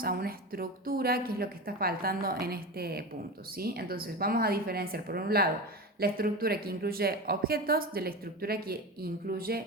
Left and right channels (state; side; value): normal; both; correlation 0.25